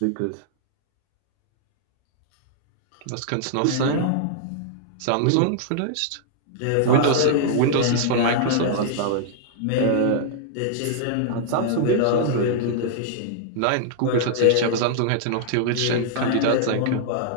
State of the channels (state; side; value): different; both; correlation -0.01